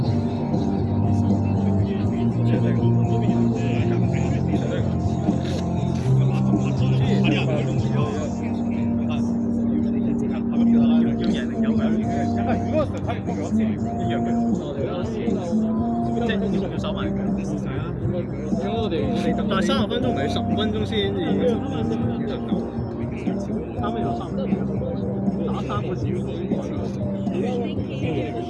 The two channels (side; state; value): both; identical; correlation 1.00